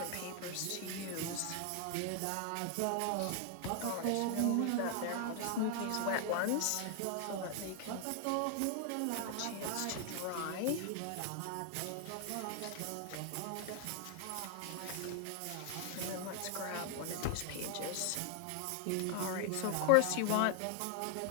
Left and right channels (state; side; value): different; both; correlation 0.00